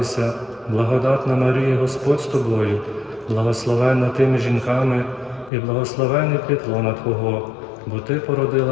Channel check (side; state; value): right; drops out; at 5.5 s